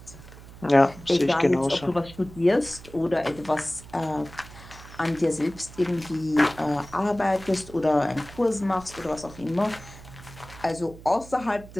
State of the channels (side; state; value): right; noise; hum, 18 dB below the sound